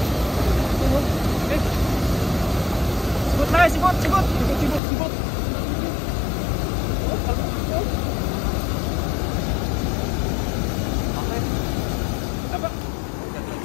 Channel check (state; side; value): drops out; right; at 4.8 s